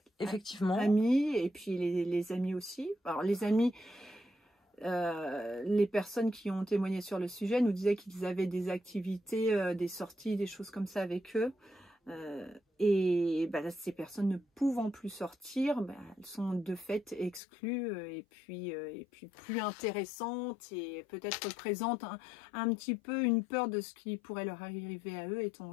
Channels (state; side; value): drops out; right; at 17.4 s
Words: Effectivement. Amis, et puis les amis aussi. Alors les amis, les personnes qui ont témoigné sur le sujet nous disaient qu'ils avaient des activités, des sorties, des choses comme ça avec eux. Ces personnes ne pouvant plus sortir, elles sont de fait exclues et puis plus intéressantes et peut-être représentent un petit peu une peur de ce qui pourrait leur arriver à eux étant